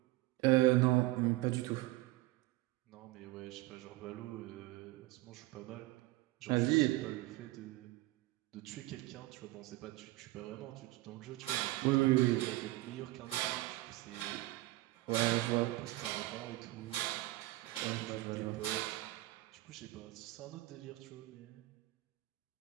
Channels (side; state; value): left; quieter; 19.1 dB